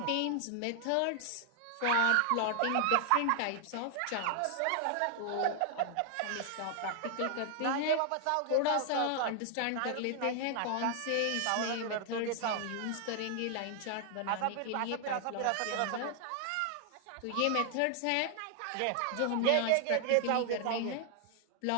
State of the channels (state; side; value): different; both; correlation 0.00